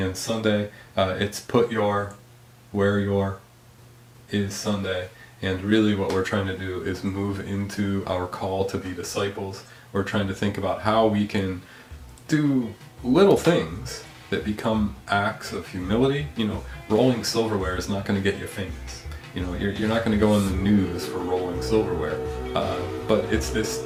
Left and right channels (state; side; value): identical; both; correlation 1.00